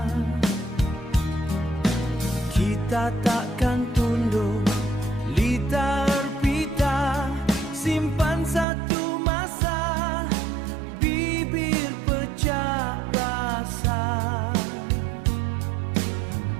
Kita takkan tunduk, litar pita, simpan satu masa, bibir pecah rasa.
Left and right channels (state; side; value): drops out; left; at 8.7 s